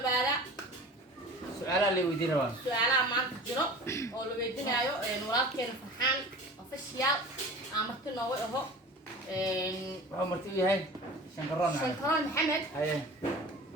بالا سؤال اللي ودي روان سؤال ما تجرب أو لو يدينا أيو نورات فرحان أوفيشيال عمرتنا وهو عمرتي هاي شنكران محمد هاي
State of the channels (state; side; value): normal; both; correlation 0.39